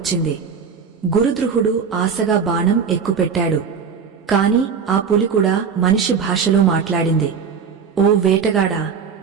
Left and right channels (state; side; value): quieter; left; 6.3 dB